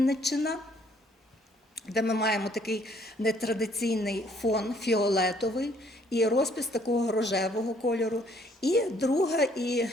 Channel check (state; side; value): normal; both; correlation 0.63